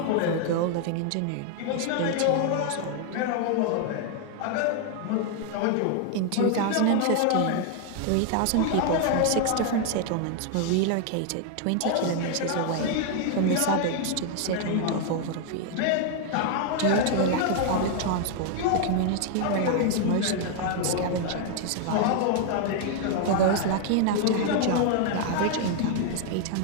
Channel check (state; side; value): different; both; correlation 0.00